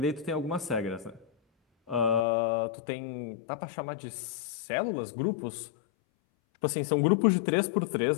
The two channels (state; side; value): drops out; right; at 2.2 s